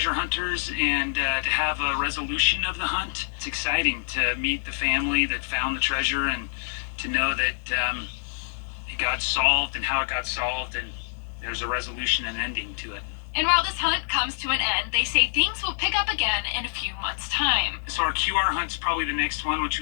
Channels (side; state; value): right; silent; 61 dB below the other